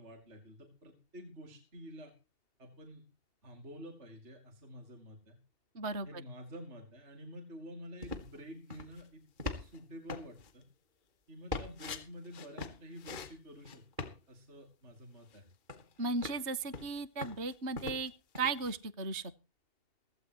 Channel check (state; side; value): late; left; 2.7 ms